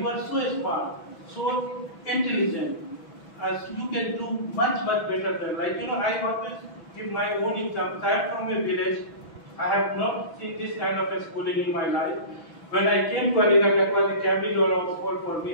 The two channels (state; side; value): late; right; 6.1 ms